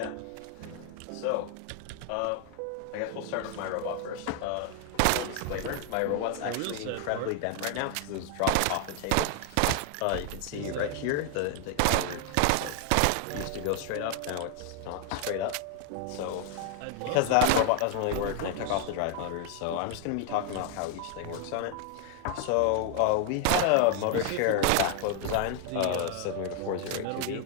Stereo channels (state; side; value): different; both; correlation 0.00